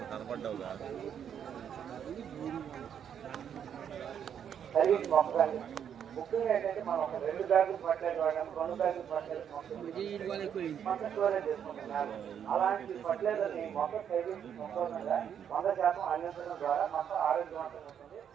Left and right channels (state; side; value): quieter; left; 8.6 dB